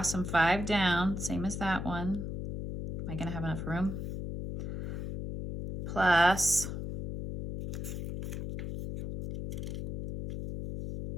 and 5 down, same as that one. Am I going to have enough room? Plus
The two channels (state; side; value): noise; left; hum, 3 dB below the sound